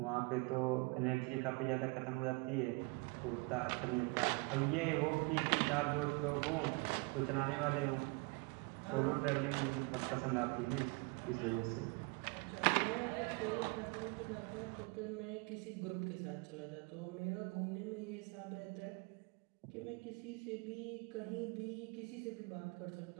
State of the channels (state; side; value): quieter; left; 28.7 dB